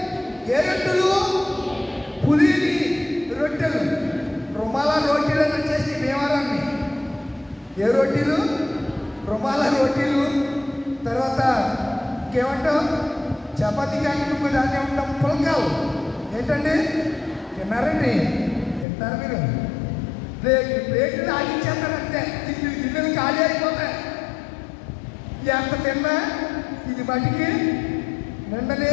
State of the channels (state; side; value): drops out; right; at 18.9 s